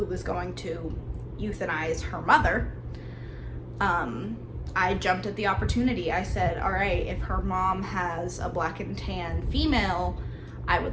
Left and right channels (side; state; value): both; identical; correlation 1.00